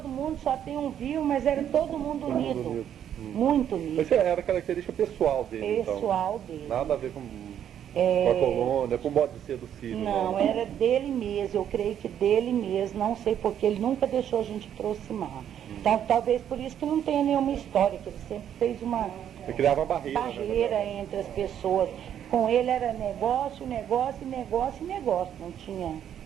mundo, só tem um vivo, mas era todo mundo unido. Muito unido. Mas era característica pessoal dele, pessoal dele. Nada a ver com a colônia, com o modo de ser do Sírio. Não, era dele mesmo, eu creio que dele mesmo, não sei porque ele nunca deixou a gente aproximar. Então, talvez por isso que não tenha nenhuma história, que ele sempre fez uma Ele criava uma barreira entre as pessoas. Com ele era negócio, não tinha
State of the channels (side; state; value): left; quieter; 9.8 dB